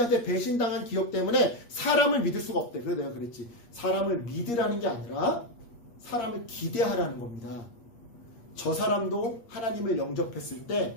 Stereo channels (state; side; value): late; right; 8.5 ms